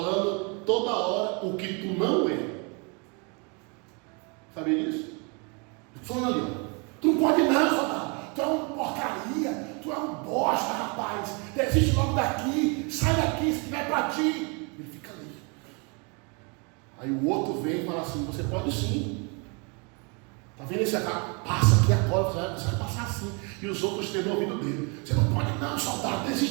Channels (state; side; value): quieter; left; 32.8 dB